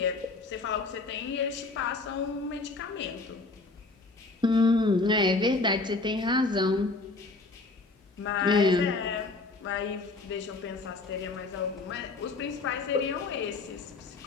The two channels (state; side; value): quieter; right; 3.5 dB